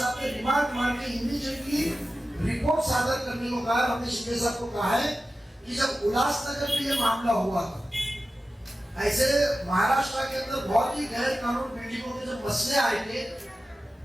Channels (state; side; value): normal; both; correlation 0.94